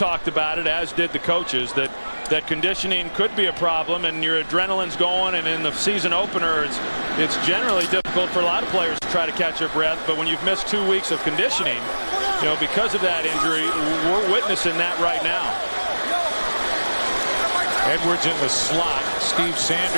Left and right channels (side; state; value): both; inverted; correlation -1.00